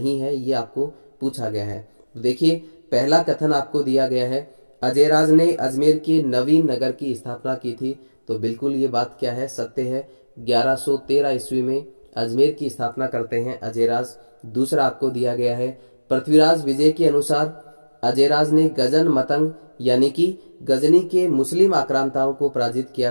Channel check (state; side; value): inverted; both; correlation -1.00